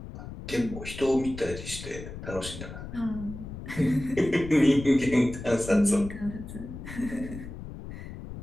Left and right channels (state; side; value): noise; left; rumble, 11 dB below the sound